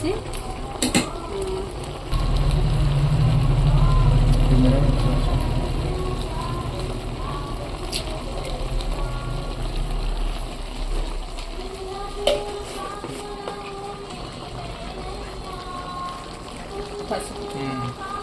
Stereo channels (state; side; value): identical; both; correlation 1.00